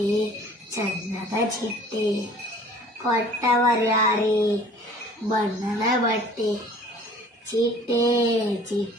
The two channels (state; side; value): normal; both; correlation 0.50